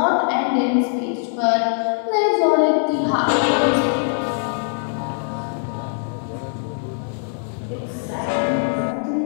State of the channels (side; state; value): right; silent; 65 dB below the other